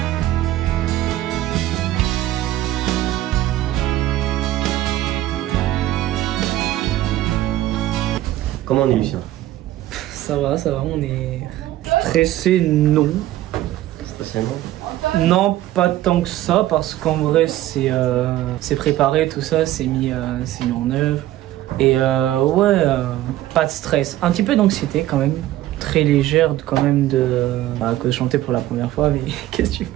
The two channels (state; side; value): quieter; left; 14.6 dB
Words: Comment on est Lucien? Ça va, on est stressé, non. Stressé non? Non, pas tant que ça, parce qu'en vrai, c'est préparé, tout ça, c'est mis en œuvre. Et ouais, pas de stress. Un petit peu d'anxiété quand même. Très légère quand même que chanter pour la première fois, mais qu'est-ce que tu